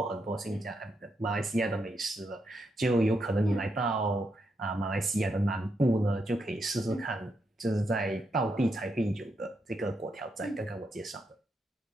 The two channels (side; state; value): both; normal; correlation 0.81